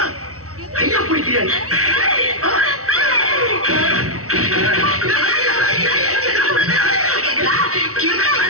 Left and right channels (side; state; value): left; late; 0.65 ms